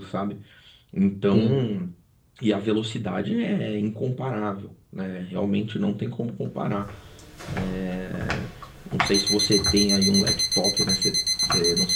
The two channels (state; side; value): identical; both; correlation 1.00